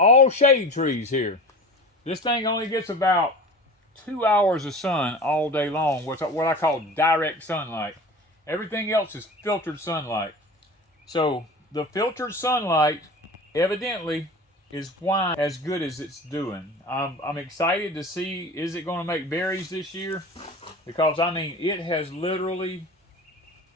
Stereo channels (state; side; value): normal; both; correlation 0.35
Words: shade trees here. This thing only gets about 2 hours of sun all day long, what I call direct sunlight. Everything else is filtered sunlight. So the filtered sunlight evidently is why as good as it's doing. I'm excited to see, is it going to make berries this year? Because I mean, it has literally